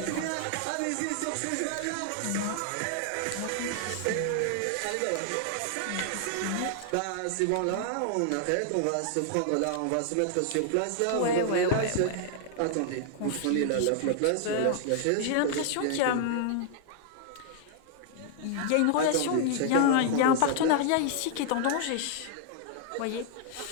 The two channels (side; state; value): both; different; correlation 0.00